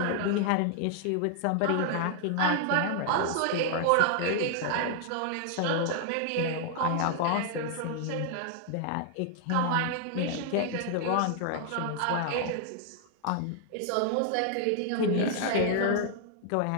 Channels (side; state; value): both; different; correlation 0.00